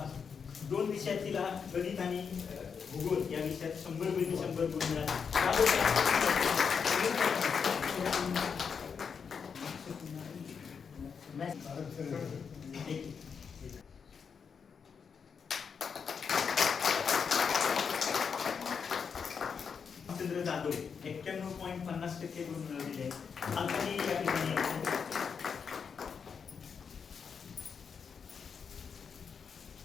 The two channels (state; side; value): quieter; right; 6.3 dB